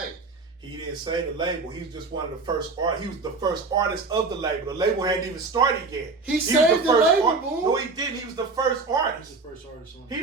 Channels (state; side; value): quieter; left; 3.9 dB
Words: He didn't save the label. He was just one of the first artists. He was the first artist of the label. The label hadn't even started yet. He saved the label, Boon. No, he didn't. He was the first artist. He was the first artist on. He